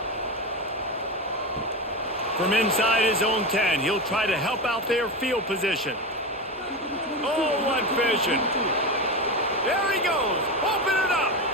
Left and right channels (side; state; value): both; normal; correlation 0.19